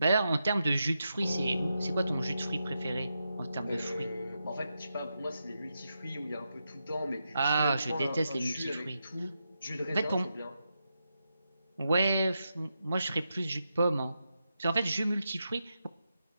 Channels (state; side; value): inverted; both; correlation -0.86